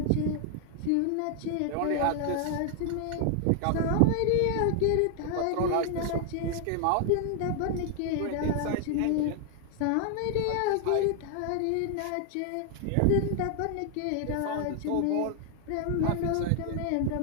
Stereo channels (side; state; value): both; different; correlation 0.00